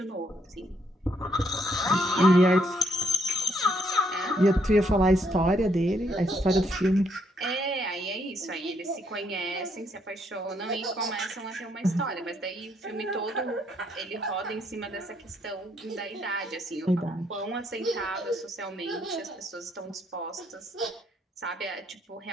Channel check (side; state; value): both; normal; correlation 0.72